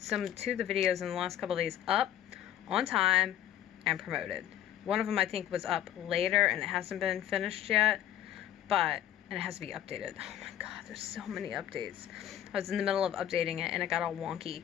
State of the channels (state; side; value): quieter; right; 11.4 dB